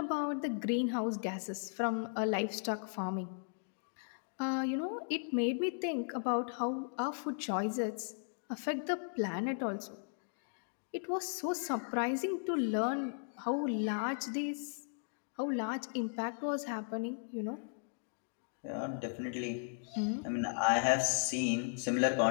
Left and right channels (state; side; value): silent; right; digital silence